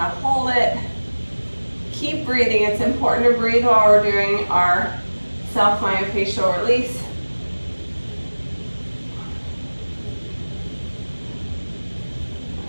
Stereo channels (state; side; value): inverted; both; correlation -1.00